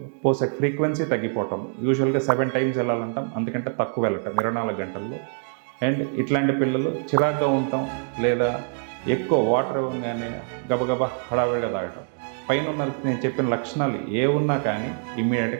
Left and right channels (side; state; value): left; silent; 56 dB below the other